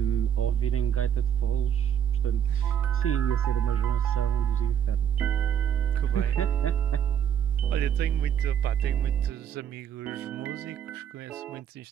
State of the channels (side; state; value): left; quieter; 9.3 dB